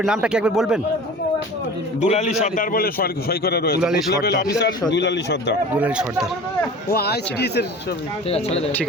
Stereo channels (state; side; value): normal; both; correlation 0.39